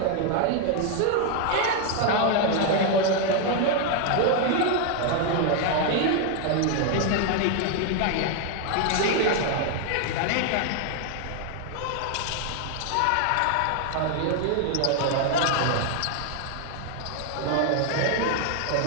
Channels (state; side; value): different; both; correlation 0.00